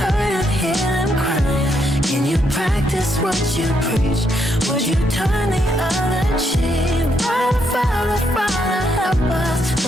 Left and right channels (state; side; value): normal; both; correlation 0.76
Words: and hear them crying. Can you practice what you preach? Would you turn the other cheek? Father, Father, Father, help us.